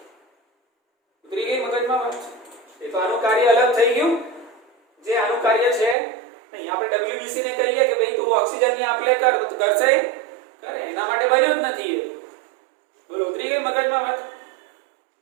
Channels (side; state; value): left; drops out; at 6.0 s